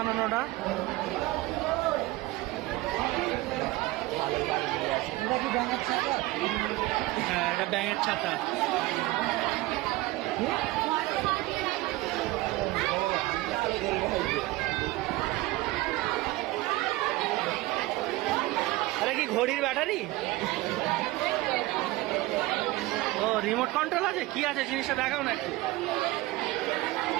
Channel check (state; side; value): quieter; left; 19.1 dB